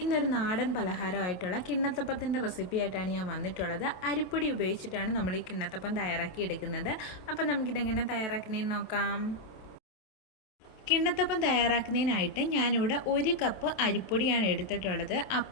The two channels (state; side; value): late; right; 27 ms